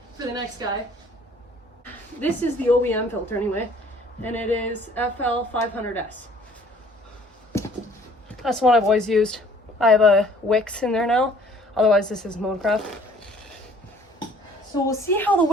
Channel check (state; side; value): normal; both; correlation 0.56